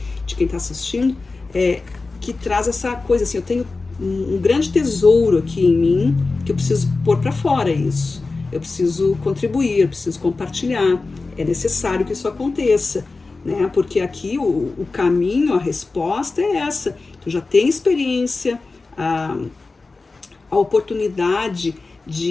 de quem está assistindo, que traz essa coisa assim, eu tenho um grande tesouro aqui em mim, que eu preciso pôr para fora isso, eu preciso contribuir, eu preciso compartilhar, é necessário que isso aconteça, né, porque aqui o caminho, a resposta é essa, tu já tem experiência, a oportunidade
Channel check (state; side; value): quieter; right; 3.8 dB